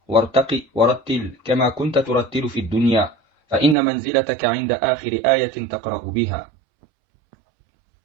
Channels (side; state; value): left; drops out; at 3.8 s